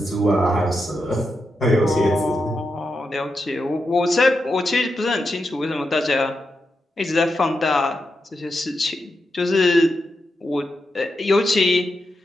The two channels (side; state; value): both; normal; correlation 0.86